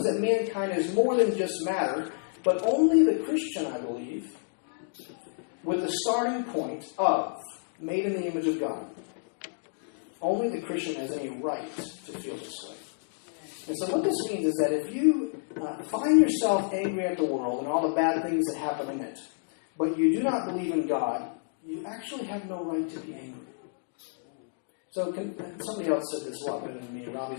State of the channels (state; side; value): silent; right; digital silence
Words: that mankind is more than just matter, but only the Christian, I believe, with the starting point of made in the image of God, only the Christian has any right to feel this way. And so what this means is that if you find yourself angry at the world and all the bad things that happen in it, but you do not believe in God, you actually have no right to be angry. So somebody else said this a lot better than me,